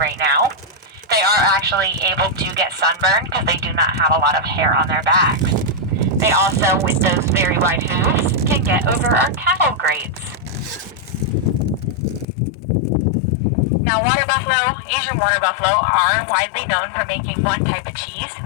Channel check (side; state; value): right; drops out; at 12.2 s